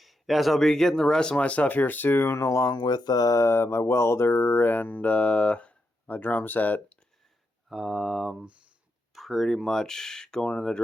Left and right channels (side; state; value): both; normal; correlation 0.84